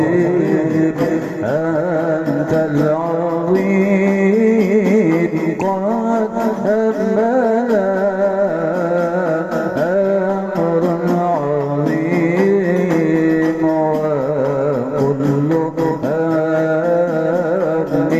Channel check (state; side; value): identical; both; correlation 1.00